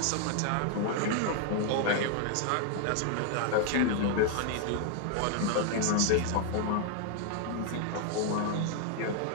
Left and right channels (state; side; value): different; both; correlation 0.00